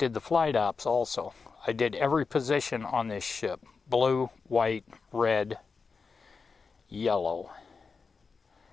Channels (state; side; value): quieter; right; 4.9 dB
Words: the flight ops also. I did every position on this ship: blue, white, red, yellow.